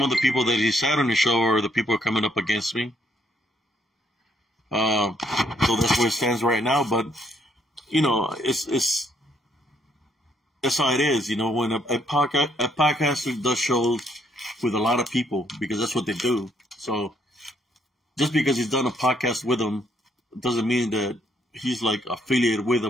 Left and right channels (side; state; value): both; normal; correlation 0.70